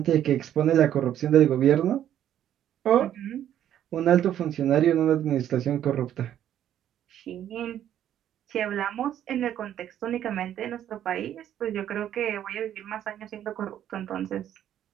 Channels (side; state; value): left; quieter; 10.9 dB